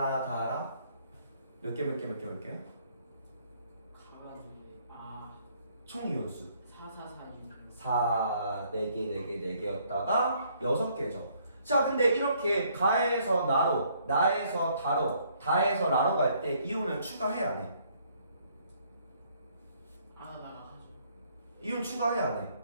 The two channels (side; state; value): both; inverted; correlation -0.66